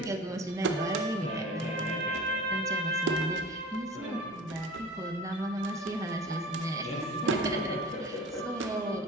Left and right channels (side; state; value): both; normal; correlation 0.38